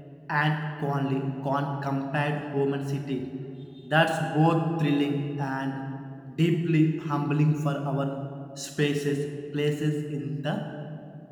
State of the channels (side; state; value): both; identical; correlation 1.00